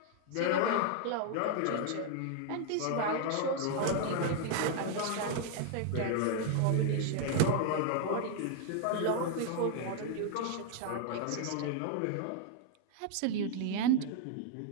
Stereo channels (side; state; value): both; different; correlation 0.00